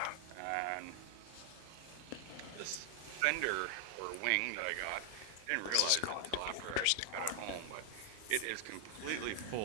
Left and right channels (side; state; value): both; different; correlation 0.00